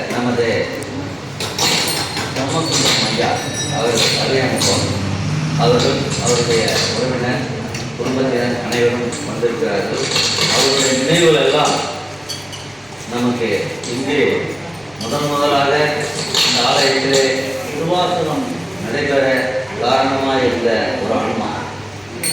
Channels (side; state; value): left; noise; rumble, 29 dB below the sound